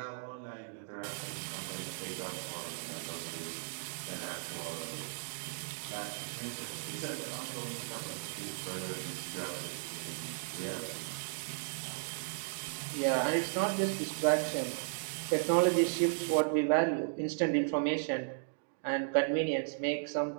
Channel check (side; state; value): left; silent; digital silence